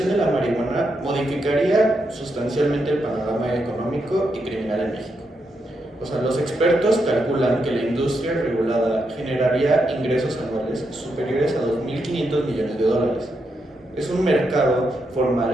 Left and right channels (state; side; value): normal; both; correlation 0.82